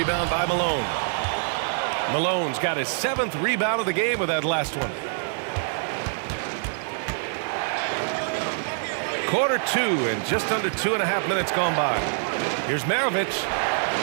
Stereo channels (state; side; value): silent; left; digital silence